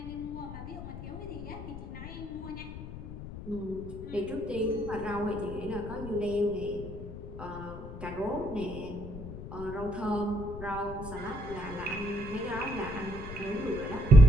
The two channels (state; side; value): noise; left; rumble, 10 dB below the sound